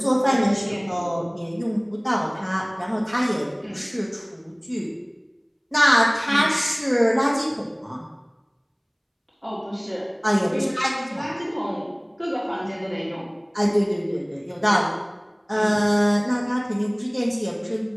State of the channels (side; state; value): both; identical; correlation 1.00